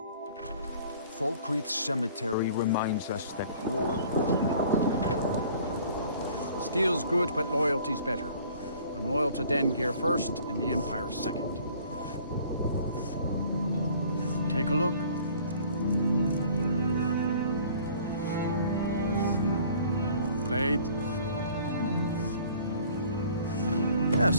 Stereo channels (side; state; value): both; inverted; correlation -0.52